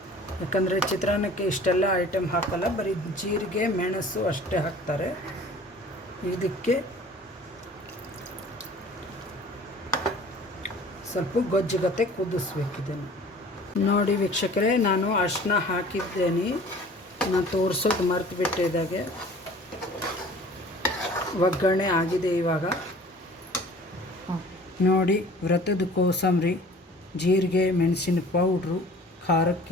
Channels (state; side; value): normal; both; correlation 0.47